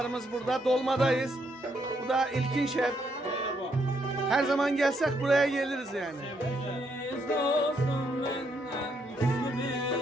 burada. Dolmadayız. Bu da İlkin Şef. Her zaman gelsek buraya geliriz yani.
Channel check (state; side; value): normal; both; correlation 0.75